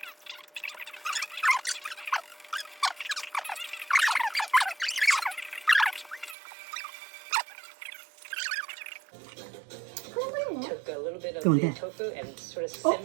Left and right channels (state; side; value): drops out; left; at 6.4 s